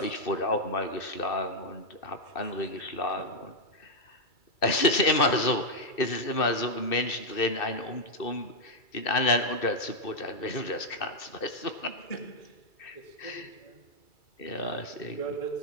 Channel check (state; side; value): late; right; 2.6 ms